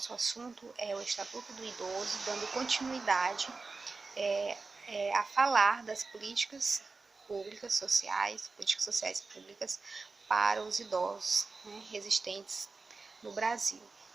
assunto é o Estatuto do Idoso, dando continuidade a falar das políticas sociais públicas para os idosos, existentes no Brasil.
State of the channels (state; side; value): quieter; left; 4.0 dB